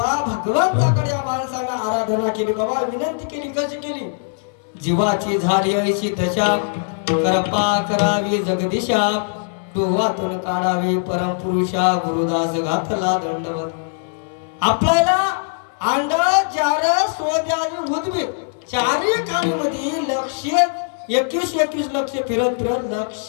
भगवंताकडे या माणसानं आराधना केली, बाबा विनंती केली. कशी केली? जीवाची झाली ऐशी दशा, कृपा करावी जगदीशा, डोहातून काढावी परमपुरुषा, गुरुदास घातला दंडवत. आपल्याला अंड जार सोद्यावी भूतबी चारी खाणीमध्ये लक्ष 21 लक्ष फिरत फिरत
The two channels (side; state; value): right; silent; 65 dB below the other